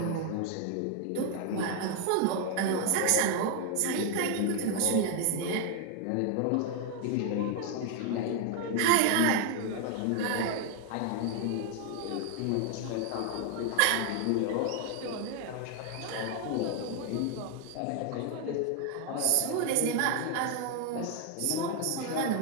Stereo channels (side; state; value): both; different; correlation 0.01